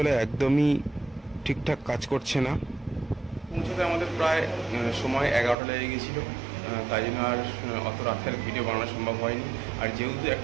একদমই ঠিকঠাক কাজ করছে না। পৌঁছাতে আমাদের প্রায় সময় 11টা লেগে গেছিলো, তাই জন্য আর অত রাতের ভিডিও বানানো সম্ভব হয়নি। আর যেহেতু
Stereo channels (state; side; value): drops out; left; at 5.6 s